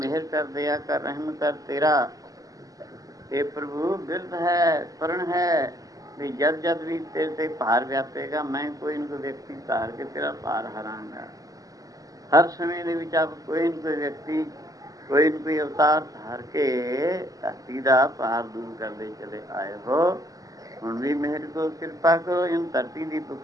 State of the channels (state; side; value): late; left; 0.17 ms